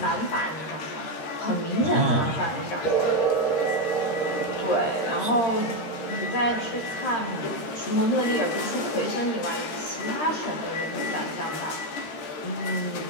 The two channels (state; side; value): late; right; 13 ms